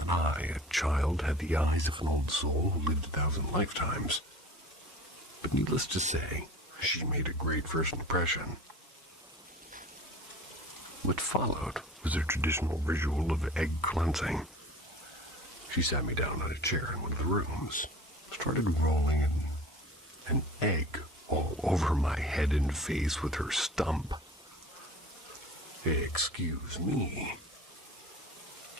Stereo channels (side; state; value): both; normal; correlation 0.41